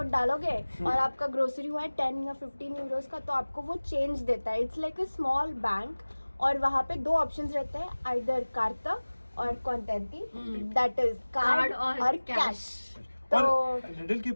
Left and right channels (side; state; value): both; inverted; correlation -1.00